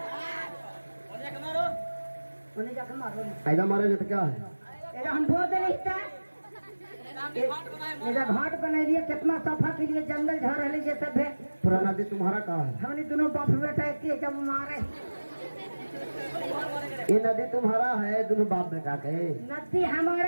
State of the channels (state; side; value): inverted; both; correlation -1.00